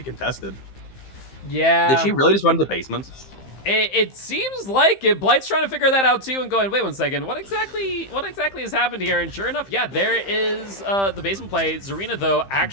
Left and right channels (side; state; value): right; late; 15 ms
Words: contested. Yeah. Did she really just run to the basement? It seems like it. Blight's trying to figure that out too and going, wait 1 second, what exactly has happened here? And sure enough, yeah, there is the basement play. Zarina, though,